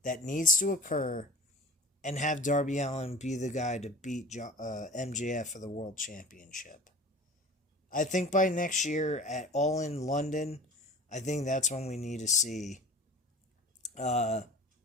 that needs to occur, and have Darby Allin be the guy to beat MJF for the World Championship. I think by next year at All In London, I think that's when we need to see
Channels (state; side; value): normal; both; correlation 0.40